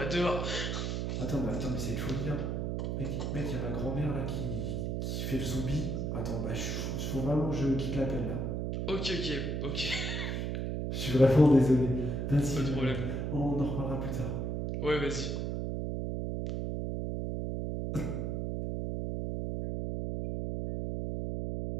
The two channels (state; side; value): noise; right; hum, 1 dB below the sound